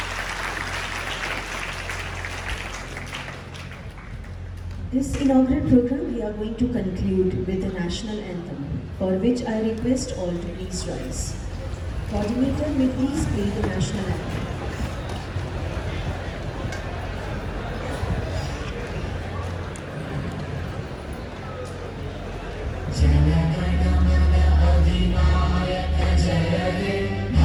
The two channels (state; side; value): identical; both; correlation 1.00